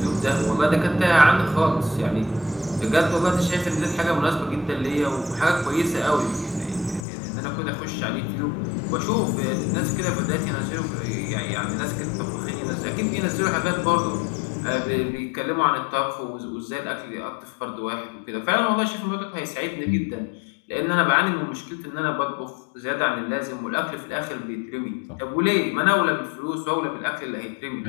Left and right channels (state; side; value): drops out; right; at 7.1 s